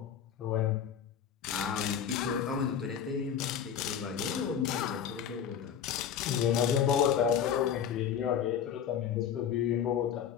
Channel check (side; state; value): right; quieter; 8.4 dB